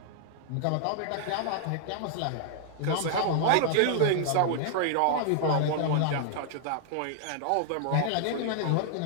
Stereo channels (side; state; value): both; different; correlation 0.00